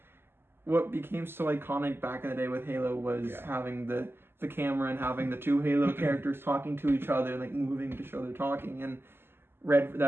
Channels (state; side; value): late; left; 0.11 ms